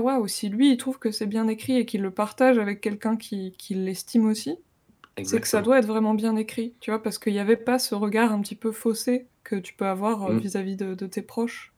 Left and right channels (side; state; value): both; identical; correlation 1.00